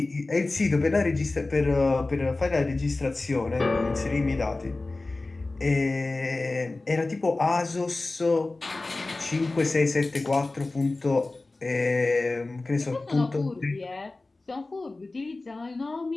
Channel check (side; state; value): right; quieter; 3.2 dB